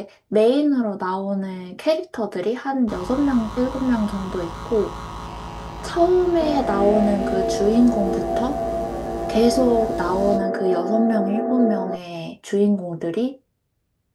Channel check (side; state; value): both; identical; correlation 1.00